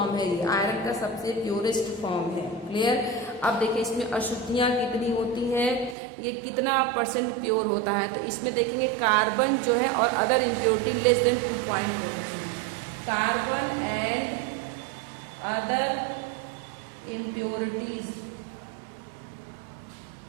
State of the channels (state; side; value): drops out; left; at 6.0 s